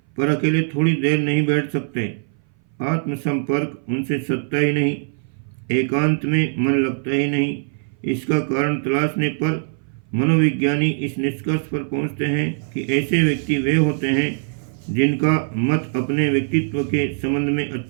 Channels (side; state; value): left; silent; 59 dB below the other